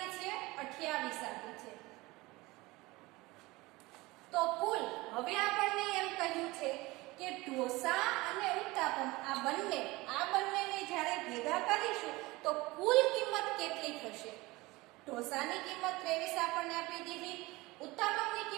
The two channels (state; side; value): quieter; left; 21.4 dB